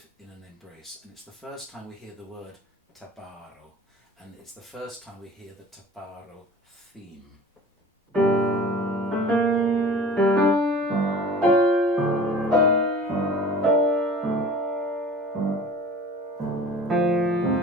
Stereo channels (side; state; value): both; normal; correlation 0.42